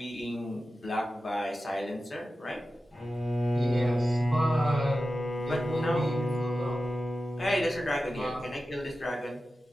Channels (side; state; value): both; normal; correlation 0.93